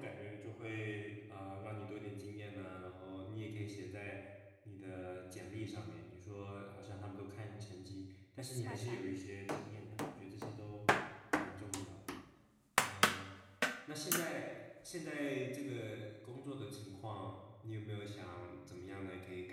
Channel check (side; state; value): both; identical; correlation 1.00